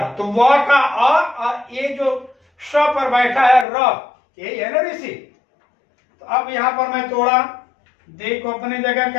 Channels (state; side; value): drops out; right; at 3.7 s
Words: तो व का और ये जो श पर बैठा है र, यही है ना ऋषि। तो अब यहां पर मैं तोड़ा, दे को अपने जगह